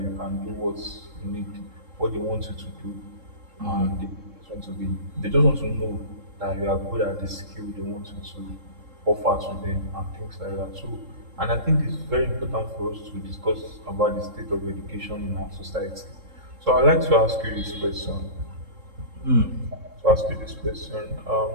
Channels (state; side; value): late; left; 3.7 ms